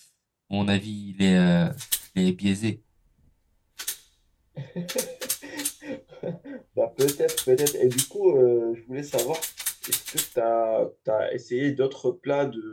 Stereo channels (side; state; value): both; identical; correlation 1.00